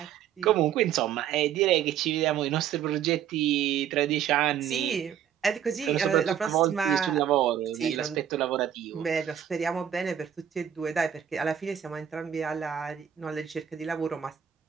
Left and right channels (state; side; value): quieter; left; 9.5 dB